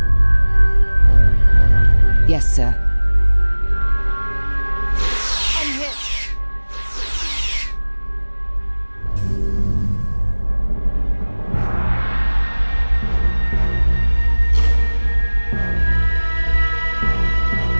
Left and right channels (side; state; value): both; inverted; correlation -1.00